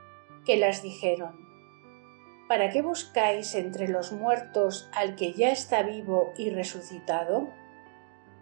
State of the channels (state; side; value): silent; left; 58 dB below the other